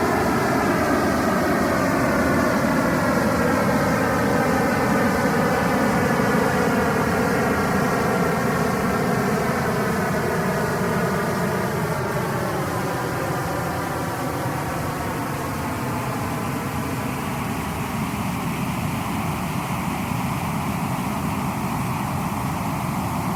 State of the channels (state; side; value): identical; both; correlation 1.00